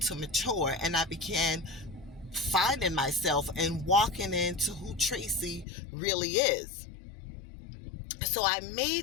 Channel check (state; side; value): drops out; right; at 5.7 s